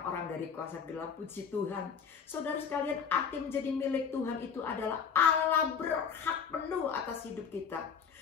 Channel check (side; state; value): right; quieter; 6.7 dB